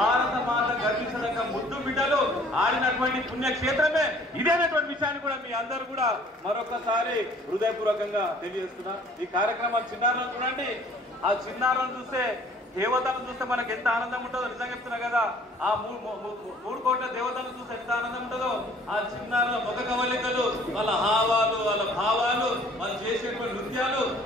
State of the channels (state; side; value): normal; both; correlation 0.54